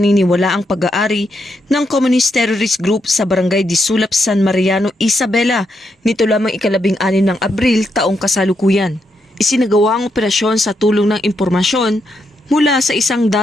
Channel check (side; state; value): both; normal; correlation 0.80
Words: ang pag-aari ng Communist Terrorist Group sa Barangay Disulap, San Mariano, Isabela nito lamang ika-16 ng Abril taong kasalukuyan. Isinagawa ang operasyon sa tulong ng impormasyon mula sa isang